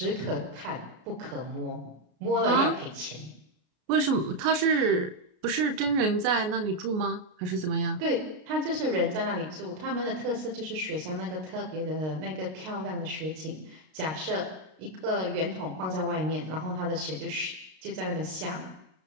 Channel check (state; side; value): late; left; 33 ms